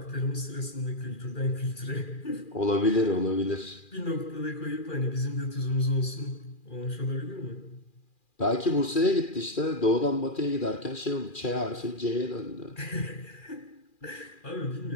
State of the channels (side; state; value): right; late; 2.4 ms